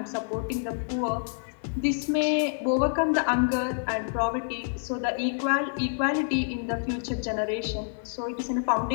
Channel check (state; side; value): silent; right; 60 dB below the other